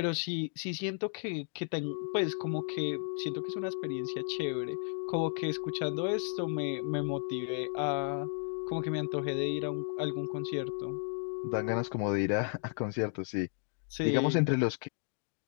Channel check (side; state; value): right; silent; 55 dB below the other